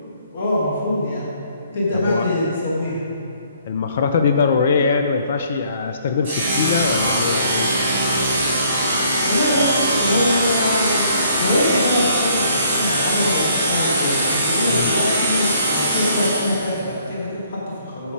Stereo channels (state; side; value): inverted; both; correlation -0.63